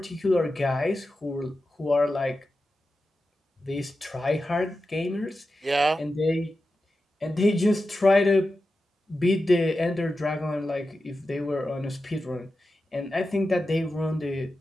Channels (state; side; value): normal; both; correlation 0.91